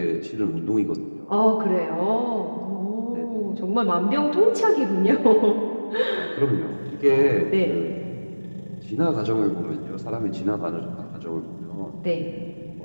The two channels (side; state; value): both; inverted; correlation -1.00